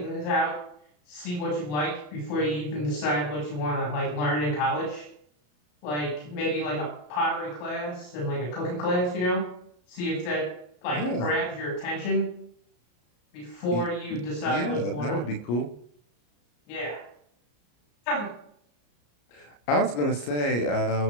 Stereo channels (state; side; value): late; right; 34 ms